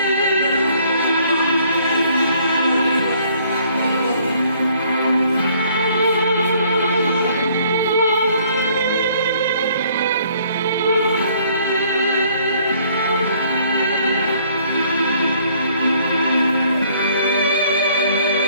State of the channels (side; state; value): both; inverted; correlation -0.61